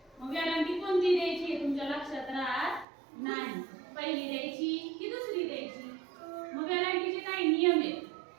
मग वेलांटी कोणती द्यायची हे तुमच्या लक्षात राहत नाही. पहिली द्यायची की दुसरी द्यायची. मग वेलांटीचे काही नियम आहेत.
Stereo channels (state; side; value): drops out; left; at 2.9 s